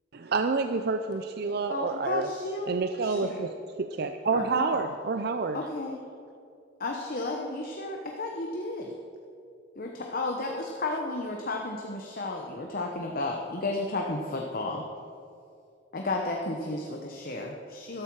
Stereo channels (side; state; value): both; normal; correlation -0.08